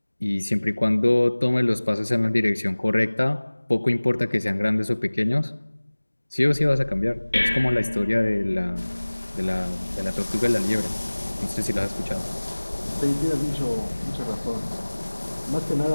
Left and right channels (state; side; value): inverted; both; correlation -1.00